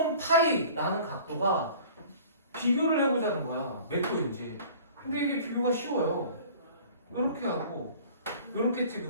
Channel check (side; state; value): both; inverted; correlation -0.46